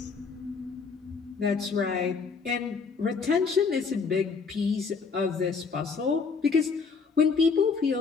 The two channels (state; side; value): quieter; right; 5.0 dB